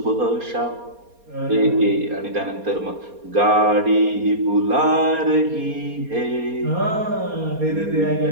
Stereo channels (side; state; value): left; late; 4.3 ms